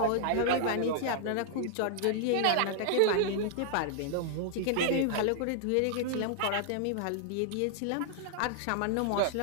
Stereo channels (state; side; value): different; both; correlation -0.01